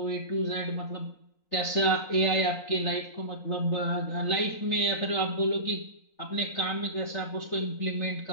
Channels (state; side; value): late; right; 3.9 ms